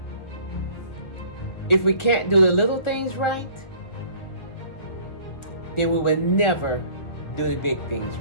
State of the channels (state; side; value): late; right; 1.4 ms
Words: If we can't do the little things right, then we will never do the big things